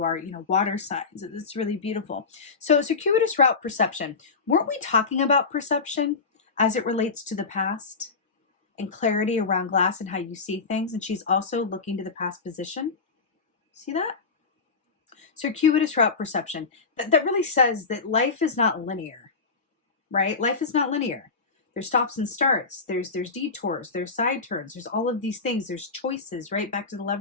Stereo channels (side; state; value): right; quieter; 4.5 dB